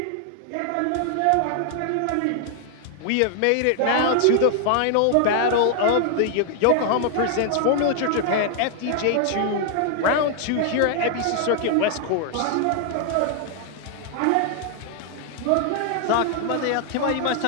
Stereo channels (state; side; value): different; both; correlation 0.00